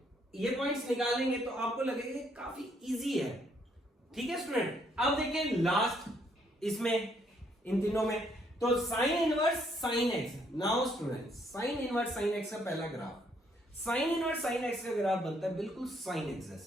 ये पॉइंट्स निकालेंगे, तो आपको लगेगा कि काफी इजी है। ठीक है स्टूडेंट, अब देखिए लास्ट इसमें इन तीनों में, तो sine inverse sine x. Now student, sine inverse sine x का पहला graph, sine inverse sine x का ग्राफ बनता है बिल्कुल साइन एक्स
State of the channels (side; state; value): both; normal; correlation 0.70